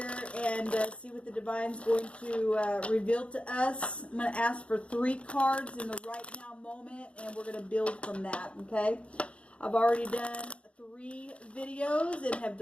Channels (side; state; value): right; late; 0.061 ms